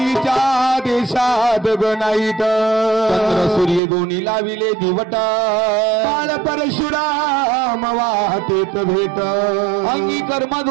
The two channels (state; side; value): drops out; left; at 3.8 s